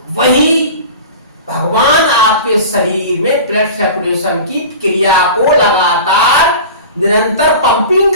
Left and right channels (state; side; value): inverted; both; correlation -0.35